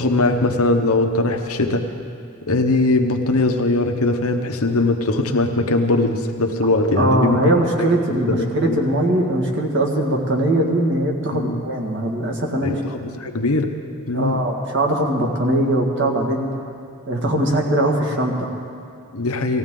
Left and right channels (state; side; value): normal; both; correlation 0.28